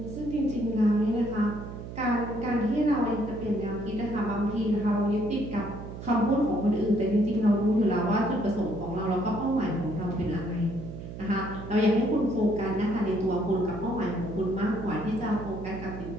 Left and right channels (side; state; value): right; noise; hum, 10 dB below the sound